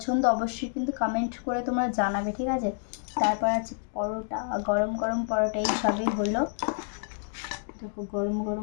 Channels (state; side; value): silent; right; digital silence